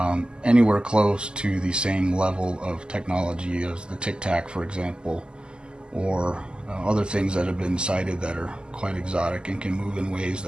anywhere close to the same level of technology as the Tic Tac, for example, or other things that have been cited that are quite exotic and can move in ways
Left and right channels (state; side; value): late; left; 0.048 ms